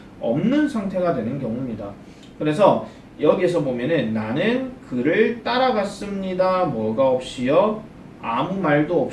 없는 상태가 되는 경우입니다. 그래서 여기에서 보면은 나는 그를 따라갔습니다. 뭐가 없이요? 아무 말도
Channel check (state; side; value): identical; both; correlation 1.00